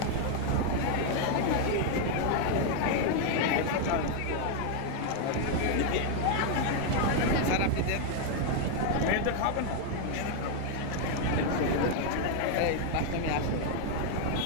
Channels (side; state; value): both; different; correlation 0.00